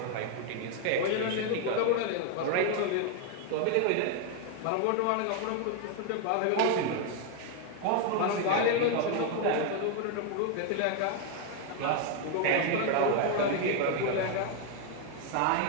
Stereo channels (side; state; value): both; different; correlation 0.01